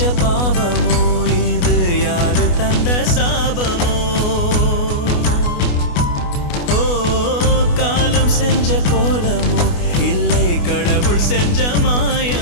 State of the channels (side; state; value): right; late; 28 ms